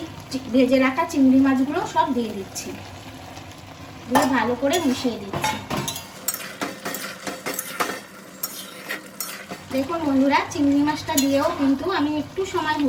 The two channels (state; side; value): identical; both; correlation 1.00